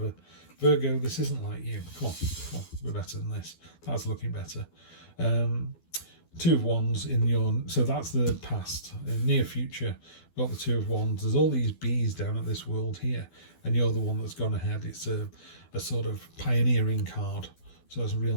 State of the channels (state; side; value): late; right; 12 ms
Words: Virgo, this isn't like you. Come on, we're better than this. That's looking better. 2 of Wands in your, so that's the past. Near future, got the 2 of Wands. There's all these bees down at this world here, and you're the one that's gone ahead. It's a sort of pioneering card, so it's a